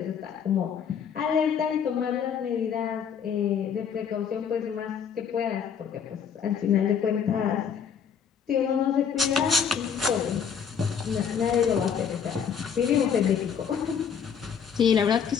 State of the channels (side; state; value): right; quieter; 7.3 dB